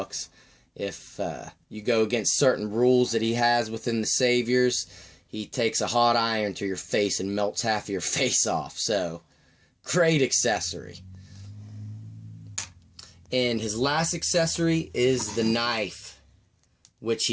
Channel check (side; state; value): both; identical; correlation 1.00